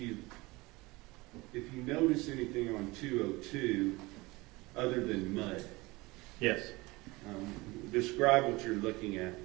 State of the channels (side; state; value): left; quieter; 22.4 dB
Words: if you notice anything on 202 other than mud. Yes. Describe what you're looking at.